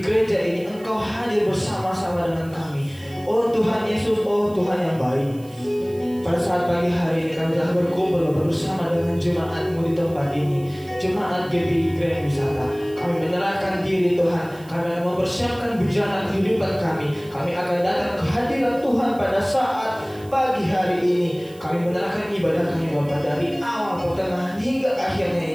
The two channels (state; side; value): noise; right; hiss, 25 dB below the sound